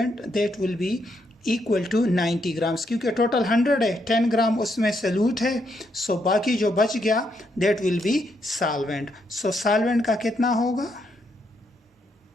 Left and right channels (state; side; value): normal; both; correlation 0.77